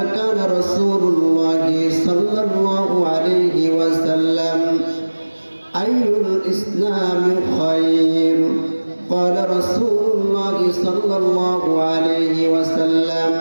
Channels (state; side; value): inverted; both; correlation -1.00